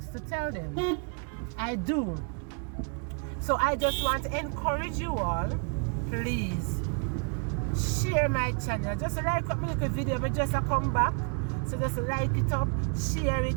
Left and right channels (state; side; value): quieter; left; 39.4 dB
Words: to tell them. I do. So I just want to encourage you all, please share my channel. Just like up my little video, I just come back. So just like it up, share